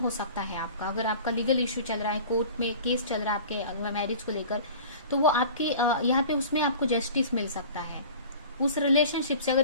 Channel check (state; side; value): inverted; both; correlation -0.41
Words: सकता है आपका। अगर आपका लीगल इशू चल रहा है, कोर्ट में केस चल रहा है आपके मैरिज को लेकर, तो वो आपके यहाँ पे उसमें आपको जस्टिस मिल सकता है उस रिलेशनशिप से।